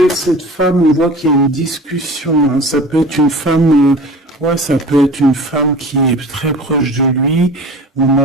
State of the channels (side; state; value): both; normal; correlation 0.39